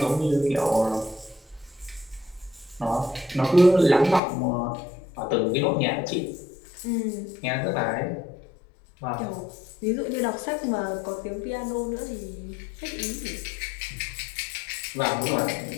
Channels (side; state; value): right; drops out; at 4.2 s